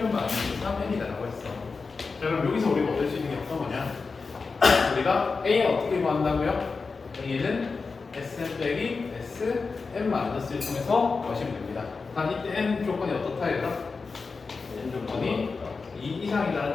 마이너스 3n이다라고 했어. 자, 그럼 여기서 우리가 얻을 수 있는 게 어떤 거냐? 우리가 A는 어떻게 구한다고요? A는 Sn 빼기 Sn-1을 통해서 구하시면 됩니다. 단 이때 n 조건이 어떻다 얘들아? n 조건이 2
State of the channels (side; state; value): right; quieter; 4.5 dB